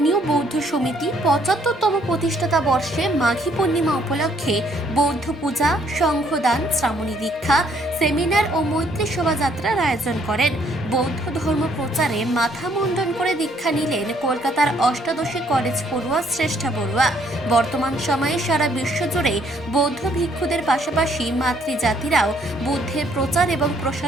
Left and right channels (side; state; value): both; normal; correlation 0.66